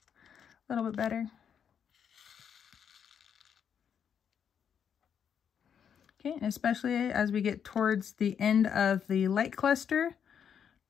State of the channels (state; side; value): quieter; right; 7.9 dB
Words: a little bit better. Okay, especially as we get towards the end of the light cluster,